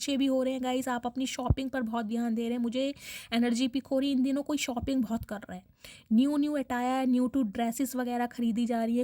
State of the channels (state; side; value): identical; both; correlation 1.00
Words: भी हो रहे हैं गाइस। आप अपनी शॉपिंग पर बहुत ध्यान दे रहे हैं। मुझे एनर्जी पिक हो रही है इन दिनों कोई शॉपिंग बहुत कर रहा है, new attire, new to dresses वगैरह खरीदी जा रही है।